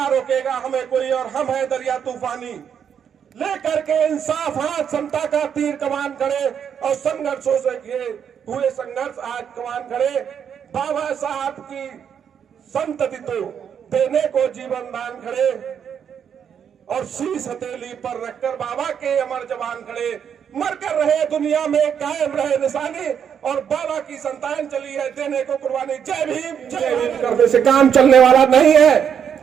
रोकेगा हमें कोई, और हम है दरिया तूफानी। लेकर के इंसाफ हाथ समता का तीर कमान खड़े, और संघर्षों से हुए संघर्ष आज कमान खड़े। बाबा साहब की संतति तो देने को जीवन दान खड़े, और शीश हथेली पर रखकर बाबा के अमर जवान खड़े। मर कर रहे दुनिया में कायम रहे निशानी, और बाबा की संतान चली है देने को कुर्बानी। जय भीम जय भीम करने से काम चलने वाला नहीं है।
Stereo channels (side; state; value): left; quieter; 8.0 dB